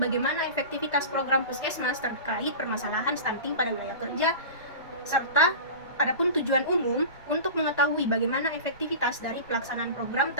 efektivitas program puskesmas terkait permasalahan stunting pada wilayah kerja, serta adapun tujuan umum untuk mengetahui bagaimana efektivitas dari pelaksanaan program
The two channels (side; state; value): both; inverted; correlation -0.32